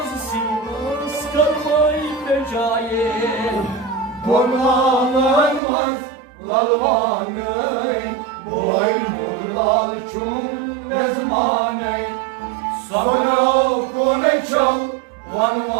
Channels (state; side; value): drops out; left; at 5.6 s